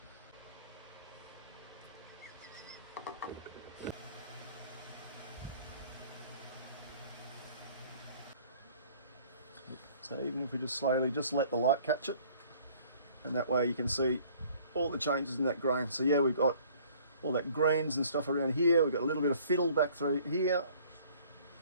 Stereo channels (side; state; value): both; inverted; correlation -0.55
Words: So even if we just slowly just let the light catch it, and that way you can see all the changes in that grain. So yeah, we've got all that greens and stuff around here. We've got a little bit of fiddle back through here.